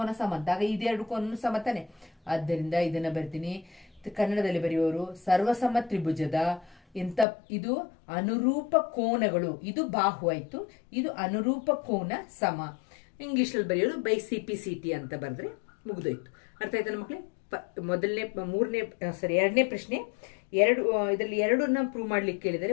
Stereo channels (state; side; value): drops out; right; at 7.2 s